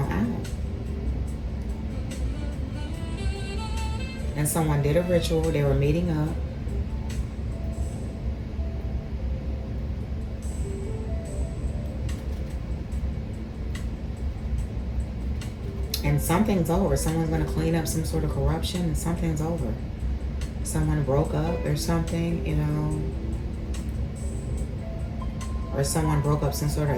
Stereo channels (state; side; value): identical; both; correlation 1.00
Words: out. And someone did a ritual. They were meeting up. And something's over. Someone's going to clean up some sort of corruption, and something's over. Someone broke up or something, you know. Or someone broke up some sort of